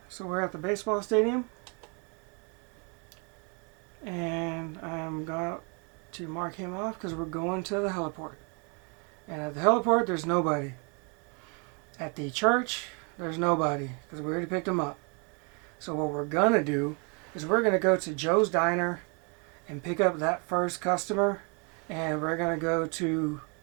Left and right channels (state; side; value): quieter; left; 35.2 dB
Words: so we're at the baseball stadium, and I'm going to mark him off because we're going to the heliport. And at the heliport, there's nobody. At the church, there's nobody because we already picked him up. So what we're going to do is we're going to go to Joe's Diner and pick up that first customer, and we're going to go to